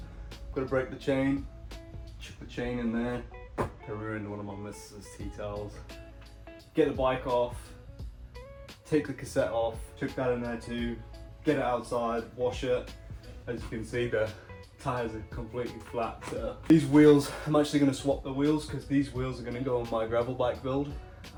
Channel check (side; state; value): both; identical; correlation 1.00